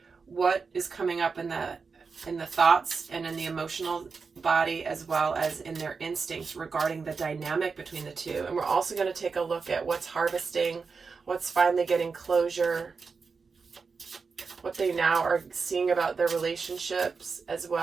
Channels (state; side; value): quieter; left; 5.0 dB